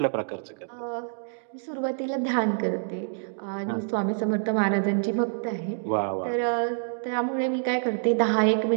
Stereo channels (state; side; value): silent; left; digital silence